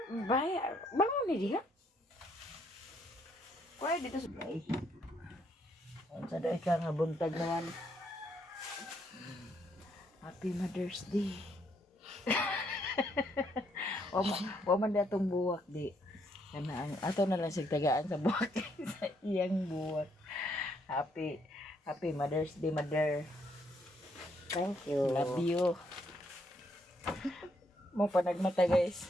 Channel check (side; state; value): both; normal; correlation 0.72